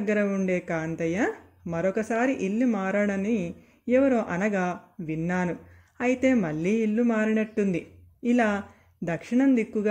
ఉండే కాంతయ్య మరొకసారి ఇల్లు మారాడని ఎవరో అనగా విన్నాను. అయితే మళ్ళీ ఇల్లు మారినట్టుంది. ఇలా దక్షిణం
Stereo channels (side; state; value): both; identical; correlation 1.00